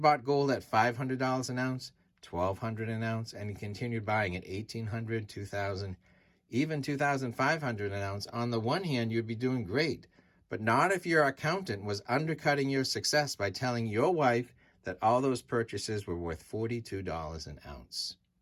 gold at $500 an ounce, $1,200 an ounce, and you continued buying at $1,800, $2,000, even $2,500 an ounce, on the one hand, you'd be doing great, but not if your accountant was undercutting your success by telling your wife that all those purchases were worth $42 an ounce.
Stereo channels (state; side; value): identical; both; correlation 1.00